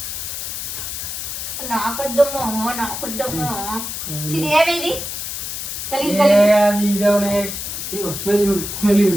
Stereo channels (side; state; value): left; noise; hiss, 5 dB below the sound